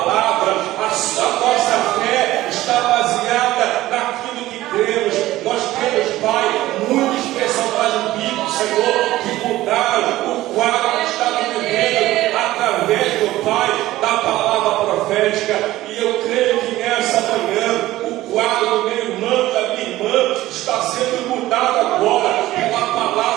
a nossa fé está baseada naquilo que cremos. Nós temos, Pai, muitos personagens bíblicos, Senhor, que mudaram o quadro que estava vivendo através do Pai, da palavra profética. E eu creio que nessa manhã o quadro do meu irmão, da minha irmã, está sendo mudado agora pela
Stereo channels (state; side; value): quieter; left; 16.1 dB